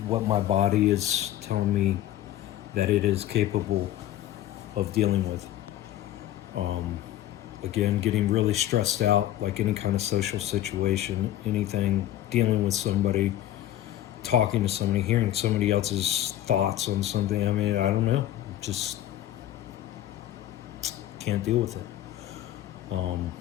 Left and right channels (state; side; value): quieter; right; 13.1 dB